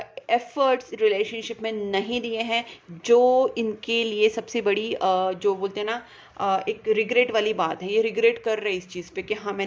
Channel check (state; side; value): identical; both; correlation 1.00